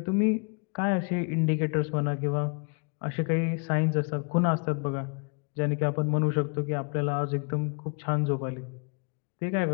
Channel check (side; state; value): right; quieter; 35.1 dB